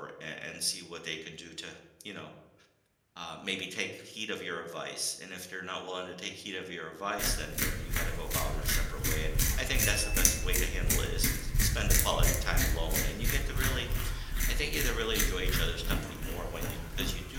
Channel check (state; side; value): identical; both; correlation 1.00